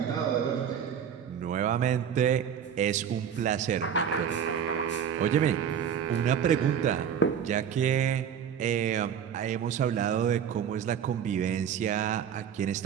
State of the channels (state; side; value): quieter; left; 8.3 dB